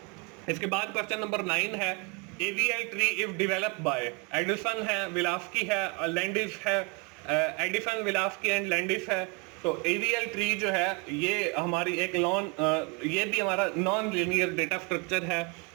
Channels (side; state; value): left; quieter; 31.9 dB